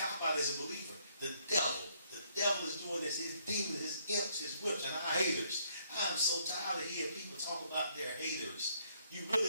as a believer. The devil is doing this, his demons, his imps, his whips, and our haters. I'm so tired of hearing people talk about their haters. You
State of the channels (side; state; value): both; inverted; correlation -0.69